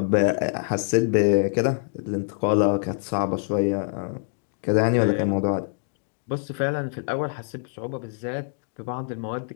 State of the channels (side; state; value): right; silent; digital silence